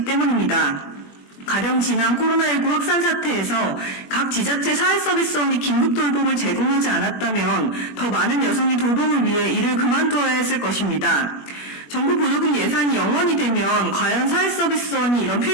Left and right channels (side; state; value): right; late; 21 ms